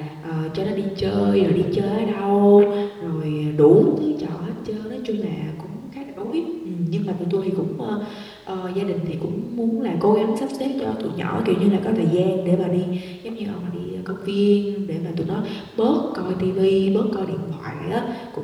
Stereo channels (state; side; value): identical; both; correlation 1.00